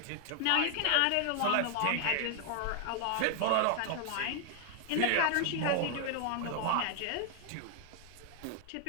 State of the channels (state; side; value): different; both; correlation 0.00